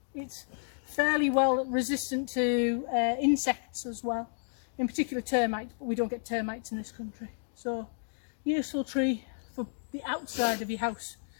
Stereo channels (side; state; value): right; silent; digital silence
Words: It's fairly well resistant to insects as well, in particular termites, but we don't get termites in this country. So useful tree for the outside of your house